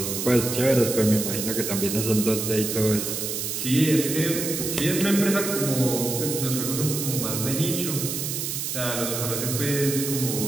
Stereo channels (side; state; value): right; noise; hiss, 3 dB below the sound